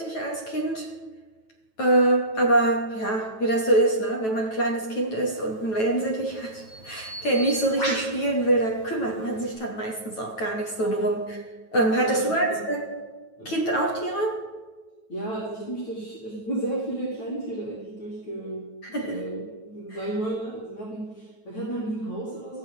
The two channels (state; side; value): late; right; 9.2 ms